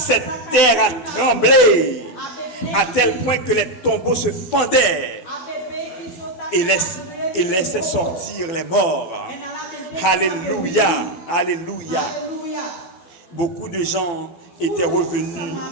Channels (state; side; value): late; right; 12 ms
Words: terre a tremblé à tel point que les tombeaux se fendaient et laissaient sortir les morts. Alléluia. Alléluia. Beaucoup de gens étaient revenus